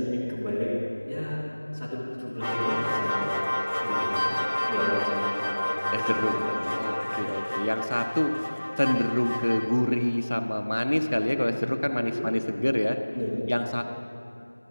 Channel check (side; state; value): both; inverted; correlation -1.00